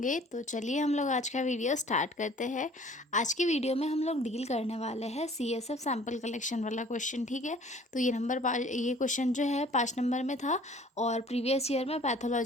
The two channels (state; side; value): normal; both; correlation 0.52